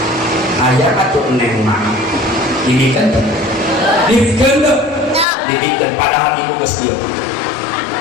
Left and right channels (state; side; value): drops out; right; at 5.2 s